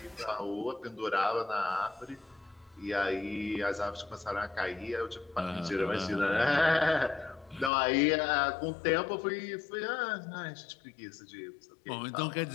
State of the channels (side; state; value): right; drops out; at 7.7 s